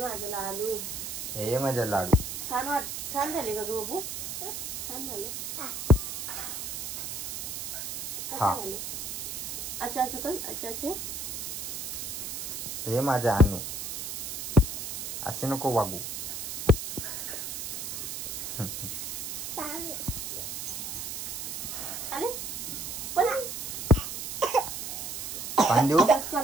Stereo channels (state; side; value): noise; right; hiss, 5 dB below the sound